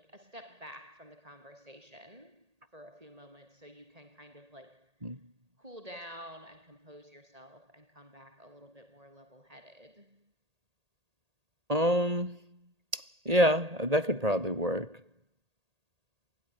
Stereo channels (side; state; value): left; late; 1.8 ms